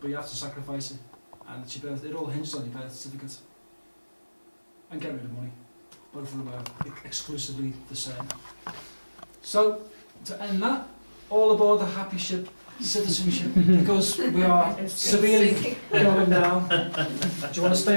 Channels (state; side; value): inverted; both; correlation -1.00